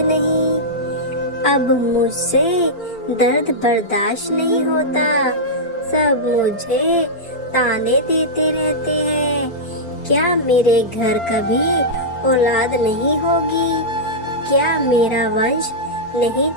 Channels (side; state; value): right; late; 4.4 ms